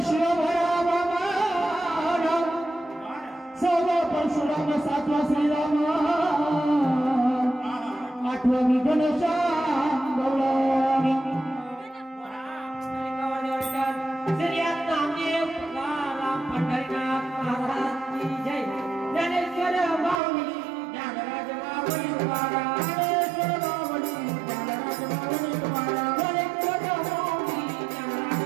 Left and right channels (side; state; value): left; drops out; at 20.2 s